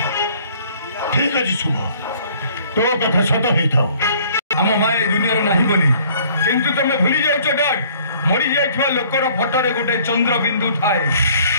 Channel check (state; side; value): inverted; both; correlation -0.57